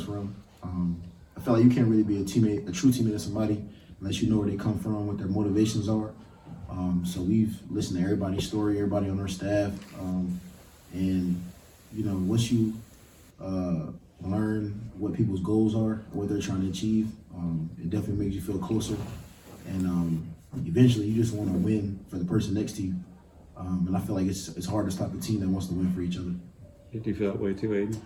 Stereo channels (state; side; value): identical; both; correlation 1.00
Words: from. I feel like you can't really be a true teammate of somebody unless you know where they come from, what their motivations are. So we've listened to everybody's story, everybody on our staff, and once you learn what people's goals are, what they're trying to achieve, it definitely makes you feel closer. And eventually, you just want to win for the person next to you. And I feel like it's hard to stop a team that wants to win for each other. Do you feel that way too, Aidan?